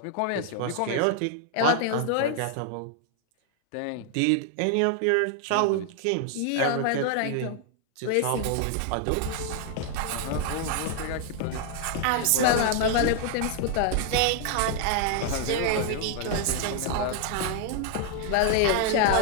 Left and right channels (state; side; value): different; both; correlation 0.00